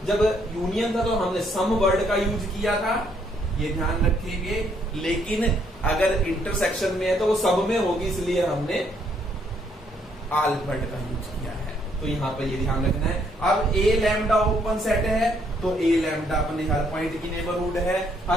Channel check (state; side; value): normal; both; correlation 0.70